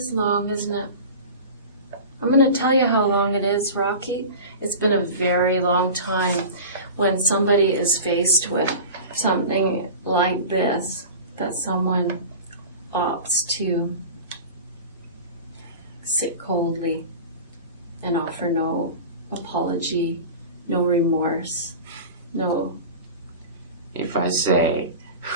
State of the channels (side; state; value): both; inverted; correlation -0.34